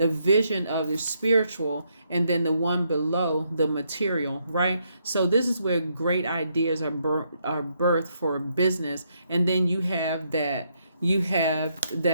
vision of the spiritual, and then the one below, the material, right? So this is where great ideas are birthed for business. And then you have that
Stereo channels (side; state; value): both; inverted; correlation -0.76